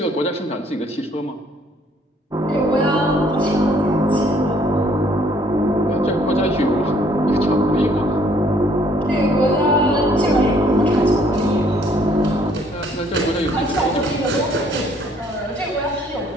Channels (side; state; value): both; normal; correlation 0.63